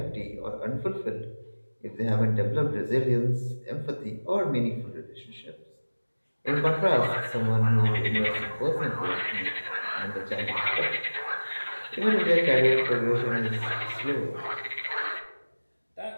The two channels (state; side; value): inverted; both; correlation -1.00